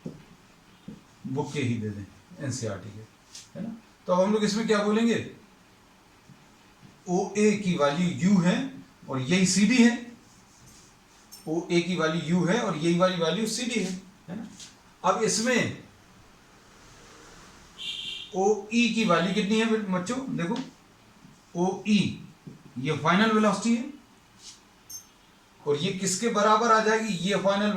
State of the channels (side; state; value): both; identical; correlation 1.00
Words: बुक के ही दे दें, एनसीईआरटी के, है ना। तो अब हम लोग इसमें क्या बोलेंगे, OA की वैल्यू U है और यही CD है। OA की वैल्यू U है और यही वाली वैल्यू CD है ना। अब इसमें OE की वैल्यू कितनी है बच्चों, देखो OE ये फाइनल वेलोसिटी है और ये किसके बराबर आ जाएगी, ये फाइनल